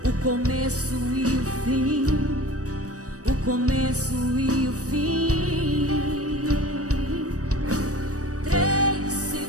o começo e o fim, o começo e o fim. Três se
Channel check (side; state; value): left; late; 0.66 ms